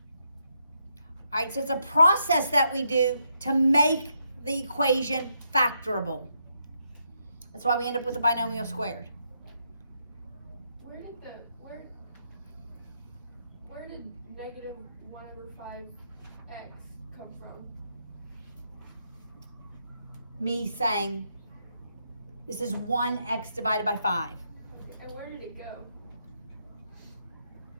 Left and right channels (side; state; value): both; inverted; correlation -0.79